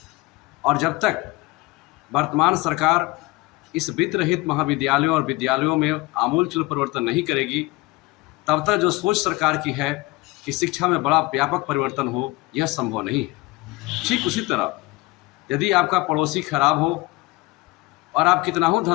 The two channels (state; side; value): quieter; right; 22.4 dB